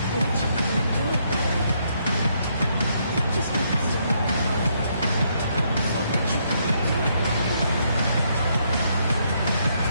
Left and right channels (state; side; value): inverted; both; correlation -0.74